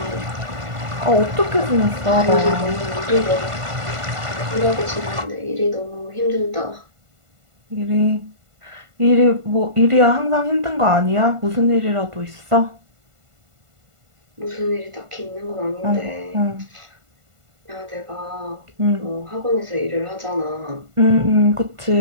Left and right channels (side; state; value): left; late; 1.5 ms